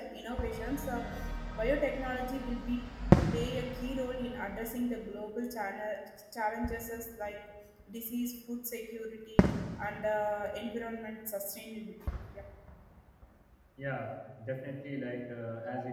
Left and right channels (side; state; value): both; identical; correlation 1.00